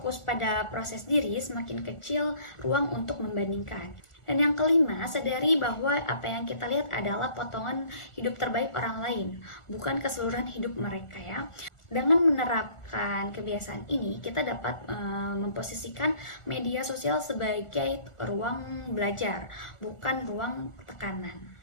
pada proses diri, semakin kecil ruang untuk membandingkan. Dan yang kelima, sadari bahwa apa yang kita lihat adalah potongan hidup terbaik orang lain, bukan keseluruhan hidup mereka ya. Dengan menerapkan kebiasaan ini, kita dapat memposisikan media sosial sebagai ruang belajar, bukan ruang tekanan.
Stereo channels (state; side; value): late; right; 1.4 ms